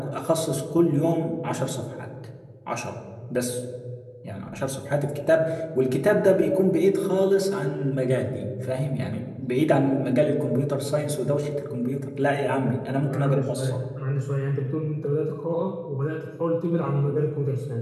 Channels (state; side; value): identical; both; correlation 1.00